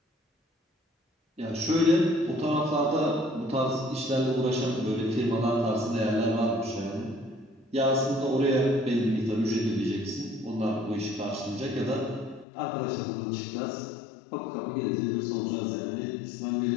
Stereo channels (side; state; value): right; drops out; at 12.5 s